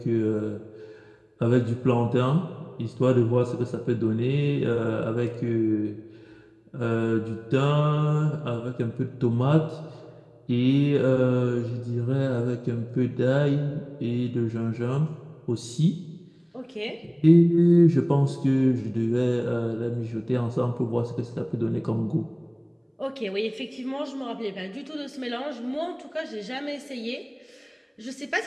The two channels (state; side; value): identical; both; correlation 1.00